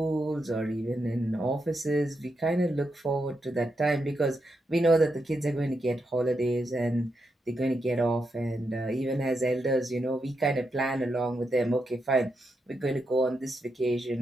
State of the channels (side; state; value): both; normal; correlation 0.84